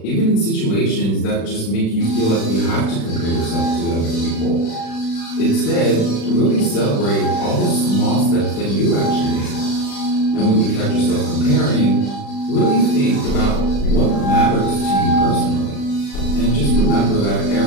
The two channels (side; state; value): right; late; 36 ms